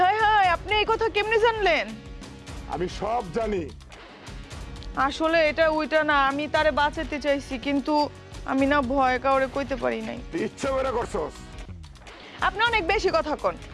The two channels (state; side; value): identical; both; correlation 1.00